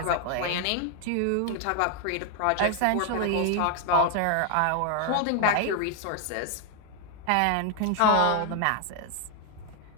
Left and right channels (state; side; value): different; both; correlation 0.00